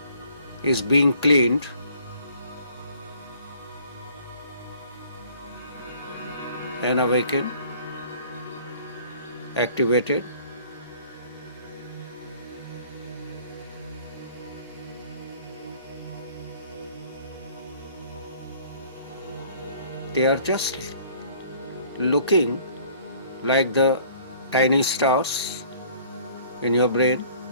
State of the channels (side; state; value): both; inverted; correlation -0.54